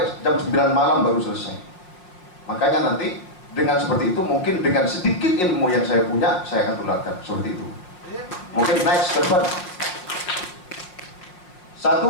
jam 9 malam baru selesai. Makanya nanti dengan seperti itu, mungkin dengan sedikit ilmu yang saya punya, saya akan tularkan seperti itu. Mungkin next ke depan.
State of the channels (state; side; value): late; right; 5.5 ms